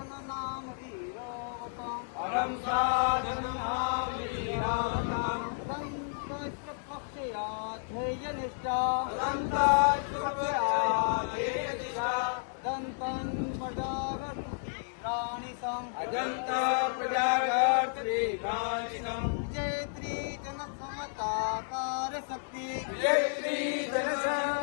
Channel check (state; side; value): silent; right; digital silence